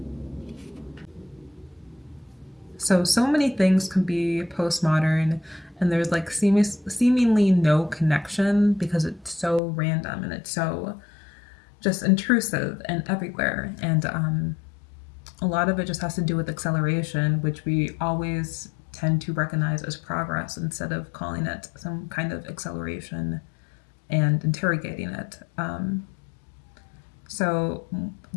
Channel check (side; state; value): right; drops out; at 9.6 s